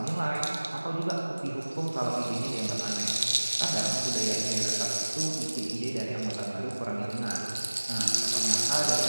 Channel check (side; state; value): both; inverted; correlation -1.00